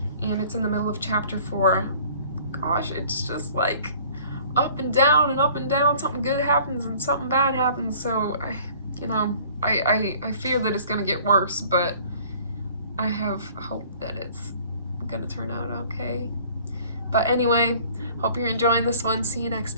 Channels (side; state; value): both; inverted; correlation -0.52